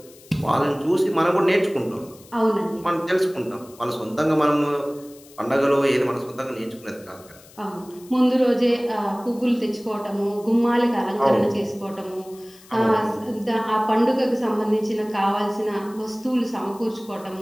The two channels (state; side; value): noise; left; hiss, 24 dB below the sound